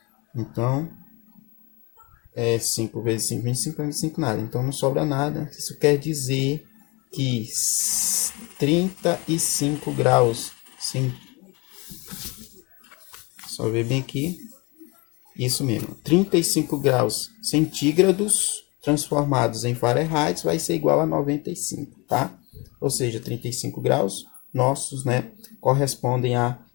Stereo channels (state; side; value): quieter; right; 27.0 dB